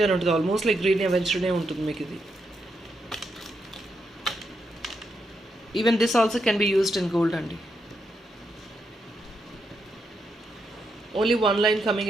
ఉంటుంది, ఆల్మోస్ట్ లైక్ గ్రీన్ ఎవెన్స్టనే ఉంటుంది మీకు ఇది. Even this also can be used in gold అండి. Only 1 line coming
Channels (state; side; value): normal; both; correlation 0.82